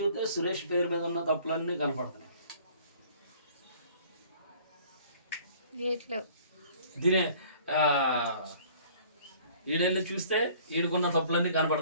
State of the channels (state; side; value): inverted; both; correlation -0.53